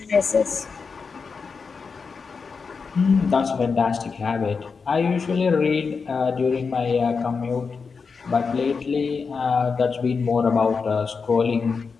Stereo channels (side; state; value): right; quieter; 5.1 dB